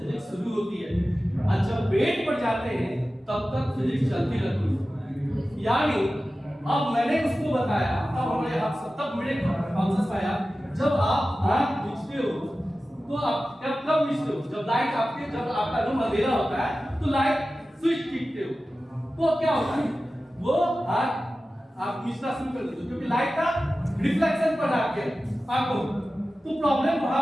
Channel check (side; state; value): both; normal; correlation 0.95